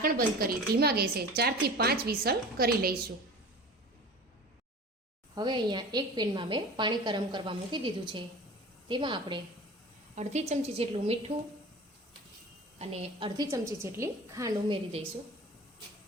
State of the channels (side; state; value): both; normal; correlation 0.38